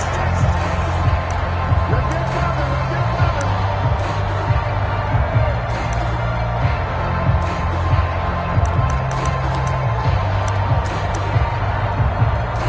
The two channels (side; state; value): both; identical; correlation 1.00